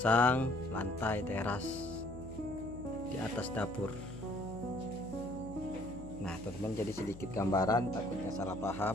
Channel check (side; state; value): left; noise; hum, 14 dB below the sound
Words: lantai teras di atas dapur. Nah teman-teman, jadi sedikit gambaran takutnya salah